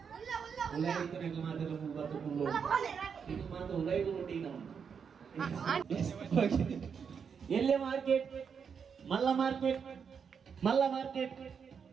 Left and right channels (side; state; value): left; quieter; 6.6 dB